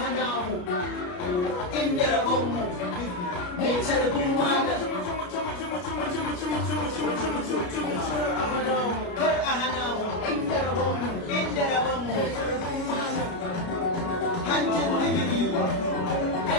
hana mu inda rabonmu mai calibin malam kar a hana mu inda rabonmu hanjin ligidi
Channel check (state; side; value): late; right; 33 ms